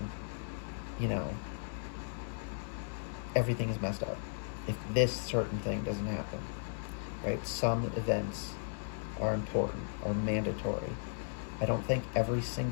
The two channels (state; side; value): silent; right; digital silence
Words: everything is messed up. If this certain thing doesn't happen, right? Some events are important, are mandatory. I don't think every